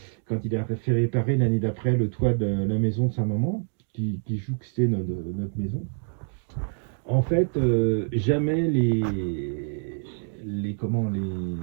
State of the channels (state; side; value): silent; left; 61 dB below the other